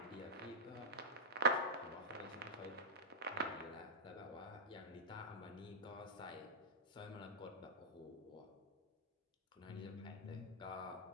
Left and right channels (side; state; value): both; normal; correlation -0.11